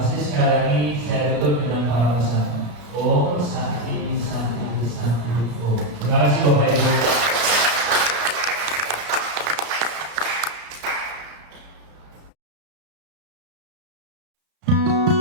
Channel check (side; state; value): left; late; 34 ms